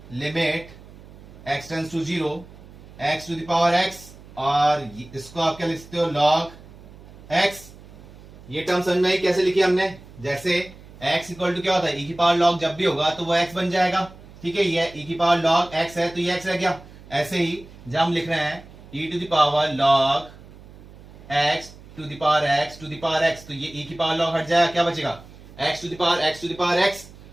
limit x tends to zero x to the power x, और इसको आप क्या लिख सकते हो, log x। ये टर्म समझ में आई कैसे लिखी हमने, जैसे x इक्वल टू क्या होता है, e की पावर log जब भी होगा तो वो x बन जाएगा, ठीक है। ये e की पावर log x है तो ये x रह गया। ऐसे ही जब हम लिख रहे हैं e to the power log x to the power x to the power x, तो ये e की पावर log हट जाएगा, क्या बचेगा x to the power x to the power x।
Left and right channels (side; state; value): right; noise; hum, 20 dB below the sound